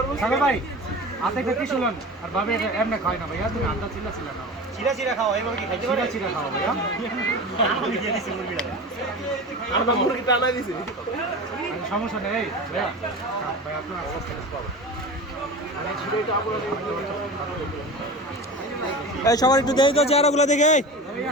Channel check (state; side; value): normal; both; correlation 0.32